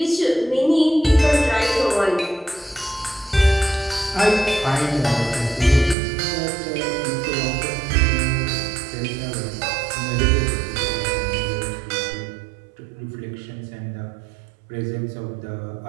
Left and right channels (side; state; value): left; drops out; at 6.0 s